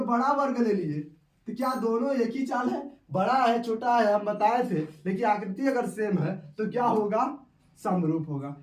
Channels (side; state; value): both; identical; correlation 1.00